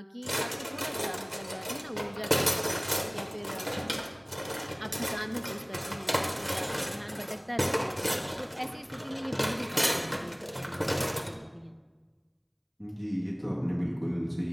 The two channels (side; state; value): both; identical; correlation 1.00